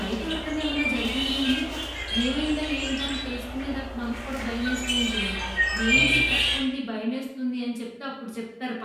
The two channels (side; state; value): both; identical; correlation 1.00